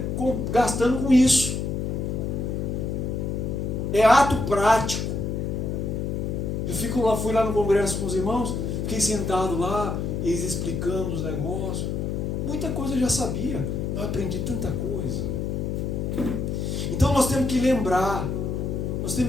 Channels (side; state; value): left; noise; hum, 1 dB below the sound